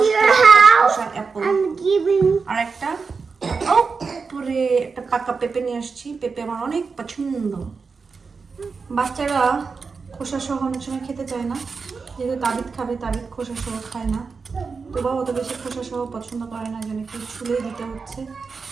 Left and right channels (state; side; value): quieter; left; 4.9 dB